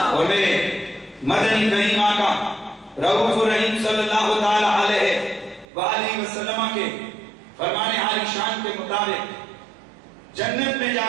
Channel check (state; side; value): drops out; left; at 5.7 s